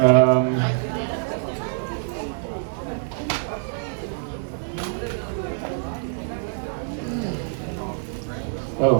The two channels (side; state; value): left; silent; digital silence